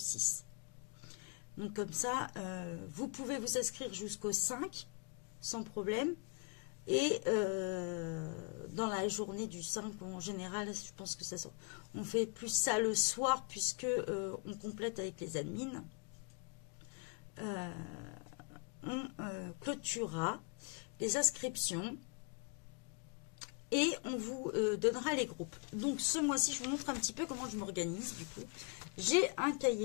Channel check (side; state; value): right; quieter; 29.4 dB